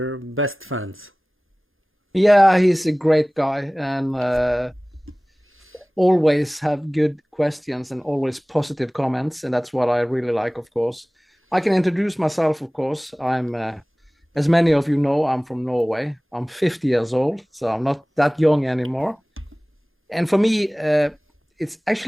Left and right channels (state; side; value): normal; both; correlation 0.98